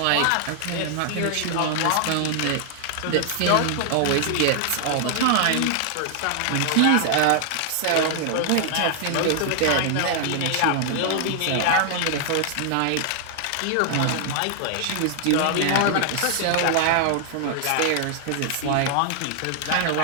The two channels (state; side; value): different; both; correlation 0.00